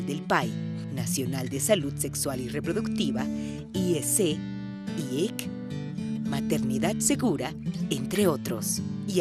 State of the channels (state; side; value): identical; both; correlation 1.00